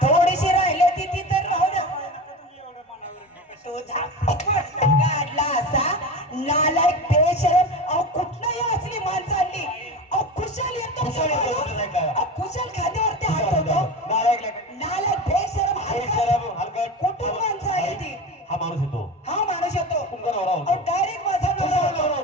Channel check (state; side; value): normal; both; correlation 0.27